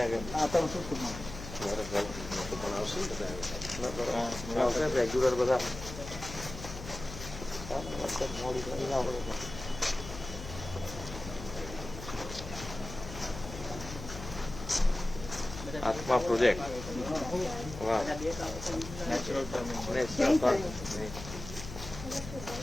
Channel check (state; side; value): noise; left; hum, 11 dB below the sound